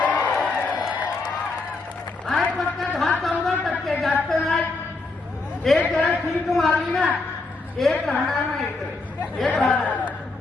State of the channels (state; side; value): quieter; right; 3.6 dB